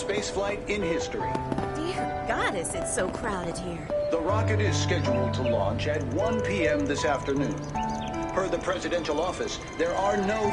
in history. Dear goddess, it's so crowded here. The rocket is scheduled to launch at 1 p.m. this afternoon. Per the presidential office, there are no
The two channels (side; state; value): both; identical; correlation 1.00